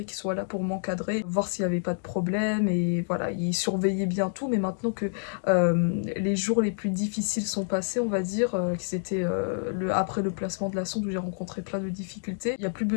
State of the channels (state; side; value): silent; right; digital silence